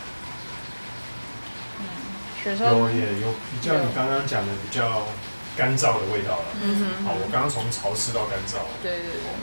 有比较你刚刚讲的比较干燥的味道了。我刚刚从潮湿到干燥。对，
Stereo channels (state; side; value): inverted; both; correlation -1.00